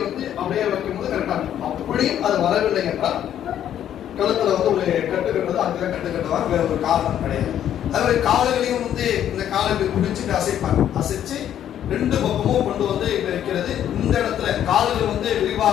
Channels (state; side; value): quieter; right; 10.5 dB